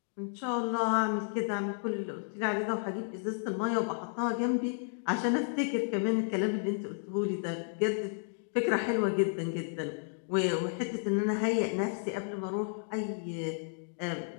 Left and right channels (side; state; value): right; silent; digital silence